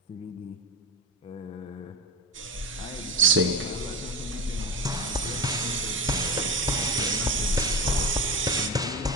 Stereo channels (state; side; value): normal; both; correlation 0.22